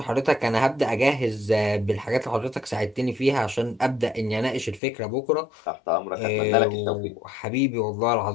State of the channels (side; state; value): right; drops out; at 4.8 s